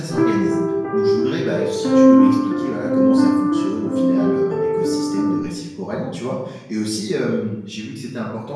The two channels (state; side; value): identical; both; correlation 1.00